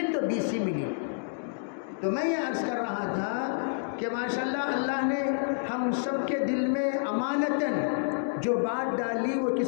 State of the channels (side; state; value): right; silent; digital silence